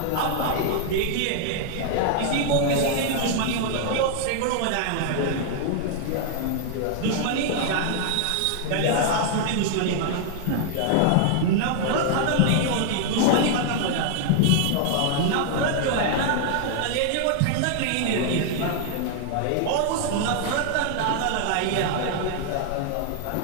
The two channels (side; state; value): both; different; correlation 0.00